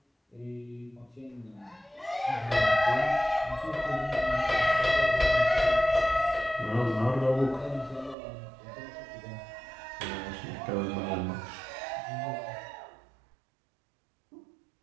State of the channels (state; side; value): drops out; left; at 8.2 s